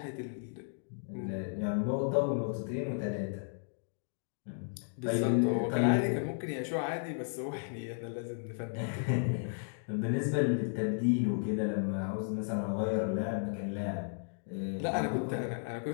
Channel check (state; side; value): silent; right; digital silence